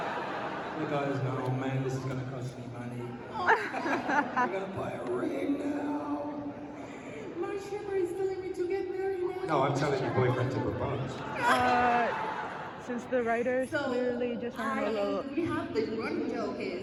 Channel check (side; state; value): both; identical; correlation 1.00